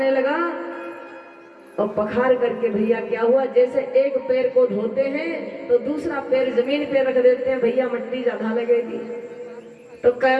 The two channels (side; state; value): both; identical; correlation 1.00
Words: लगा, और पखार करके भैया क्या हुआ, जैसे एक पैर को धोते हैं तो दूसरा पैर जमीन पे रख देते हैं, भैया मिट्टी ज्यादा लगेगी। तो